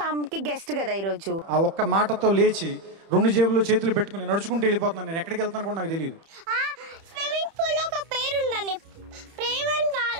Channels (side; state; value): left; late; 30 ms